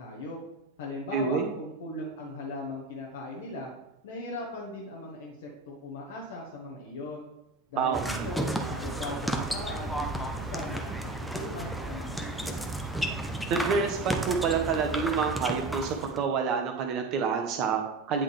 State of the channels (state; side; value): quieter; left; 3.3 dB